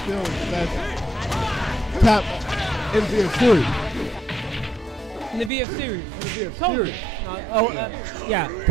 the best top in the VF series. In the VF series.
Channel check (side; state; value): left; drops out; at 5.5 s